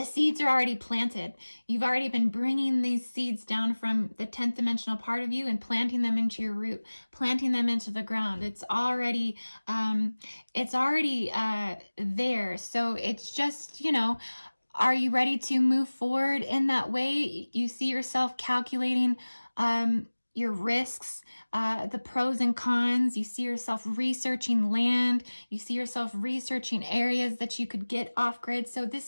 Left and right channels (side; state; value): both; inverted; correlation -1.00